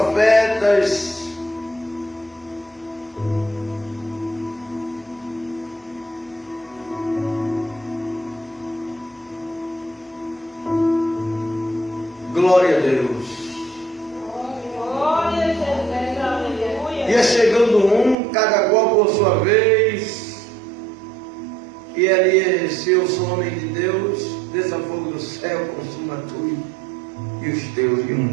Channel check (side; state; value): left; drops out; at 18.2 s